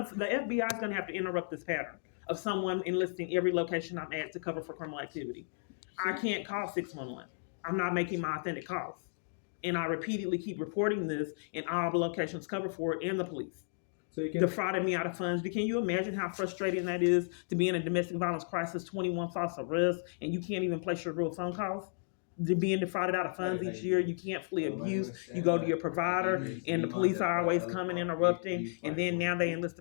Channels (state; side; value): silent; right; digital silence